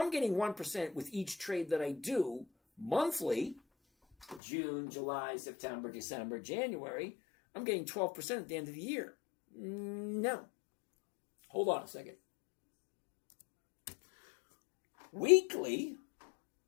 getting 1% with each trade that I do monthly, June, July, September, December, January, I'm getting 12% at the end of the year. No. Hold on a second. Weekly,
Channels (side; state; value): right; drops out; at 4.4 s